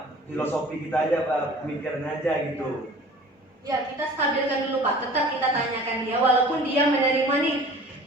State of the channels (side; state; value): both; normal; correlation 0.45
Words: filosofi kita aja, Pak, pemikiran aja gitu. Ya, kita stabilkan dulu Pak. Tetap kita tanyakan dia. Walaupun dia menerima nih,